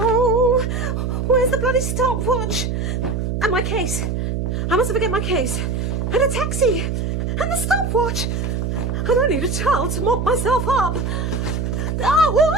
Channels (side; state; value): right; noise; hum, 1 dB below the sound